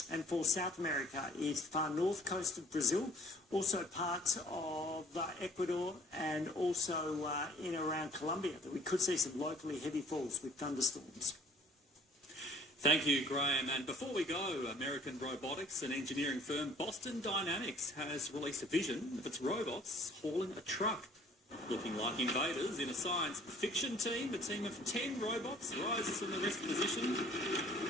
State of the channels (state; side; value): normal; both; correlation 0.54